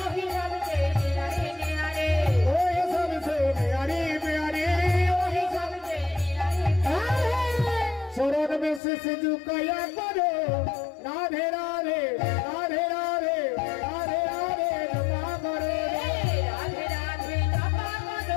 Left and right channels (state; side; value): drops out; right; at 8.8 s